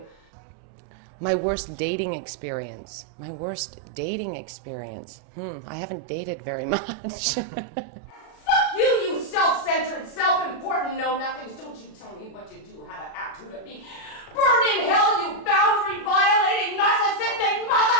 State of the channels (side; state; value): right; late; 36 ms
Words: My worst dating experience. I haven't dated very much. Fuck you, you self-centered, self-important know-nothings. Don't you tell me what you do, how to act, who to be. Burn in hell, you boundary-violating, narcissistic